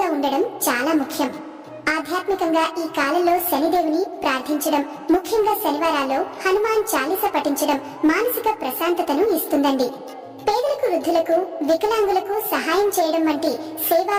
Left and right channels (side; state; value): both; identical; correlation 1.00